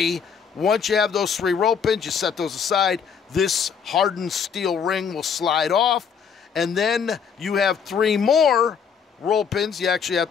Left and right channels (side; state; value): right; quieter; 6.8 dB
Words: Once you have those 3 roll pins, you set those aside. This hardened steel ring will slide off, and then you have 3 more roll pins. You actually have